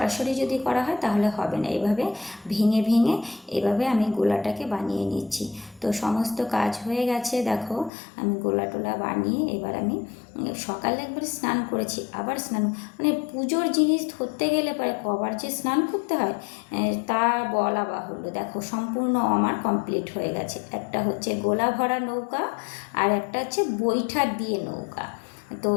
যদি করা হয় তাহলে হবে না। এভাবে ভেঙে ভেঙে এভাবে আমি গোলাটাকে বানিয়ে নিচ্ছি। তো সমস্ত কাজ হয়ে গেছে, দেখো আমি গোলা টোলা বানিয়ে এবার আমি সকালে একবার স্নান করেছি, আবার স্নান, পুজোর জিনিস ধরতে গেলে পরে কবার যে স্নান করতে হয় তা বলা বাহুল্য। দেখো সম্পূর্ণ আমার কমপ্লিট হয়ে গেছে। একটা হচ্ছে গোলা ভরা নৌকা, আর একটা হচ্ছে বৈঠা দিয়ে নৌকা। তো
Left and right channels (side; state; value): right; drops out; at 7.9 s